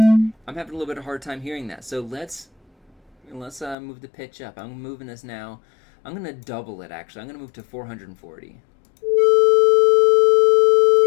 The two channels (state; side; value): drops out; right; at 3.8 s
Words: I'm having a little bit of a hard time hearing that. So let's move the pitch up. I'm moving this now. I'm going to double it, actually. I'm going to move to 440.